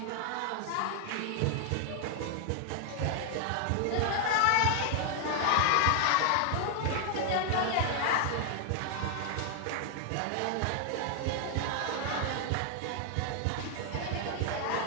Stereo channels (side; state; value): both; different; correlation 0.00